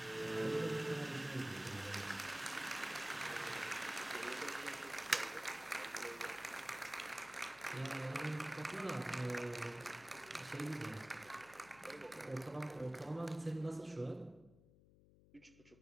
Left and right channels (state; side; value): noise; left; hum, 23 dB below the sound